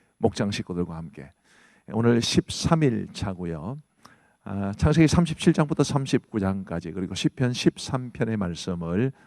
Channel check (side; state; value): both; identical; correlation 1.00